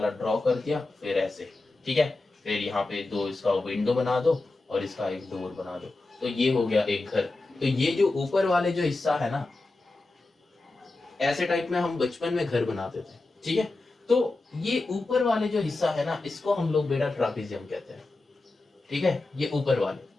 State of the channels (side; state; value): right; quieter; 3.2 dB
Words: ड्रॉ कर दिया, फिर ऐसे, ठीक है। फिर यहाँ पे दो इसका विंडो बना दो और इसका एक डोर बना दो, तो ये हो गया एक घर। तो ये जो ऊपर वाले जो हिस्सा है ना, ऐसे टाइप में हम बचपन में घर बनाते थे, ठीक है। तो ये ऊपर वाले जो हिस्सा है ना, इसको हम लोग बेटा ट्रापेजियम कहते हैं, ठीक है। ये ऊपर वाले,